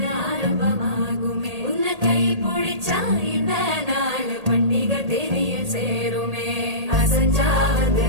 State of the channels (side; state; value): left; late; 1.8 ms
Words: ஆரம்பமாகுமே உன்னை கை பிடிச்சா இந்த நாள் பண்டிகை தெரிய சேருமே அசஞ்சா வந்து